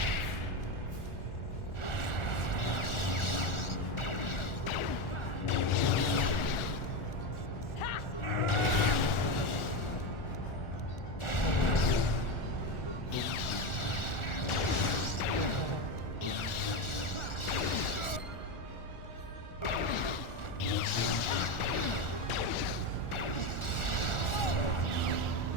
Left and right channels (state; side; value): late; right; 1.4 ms